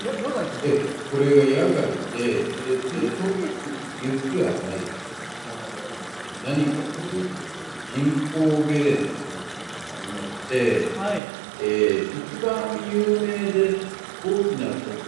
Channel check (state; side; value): drops out; left; at 11.2 s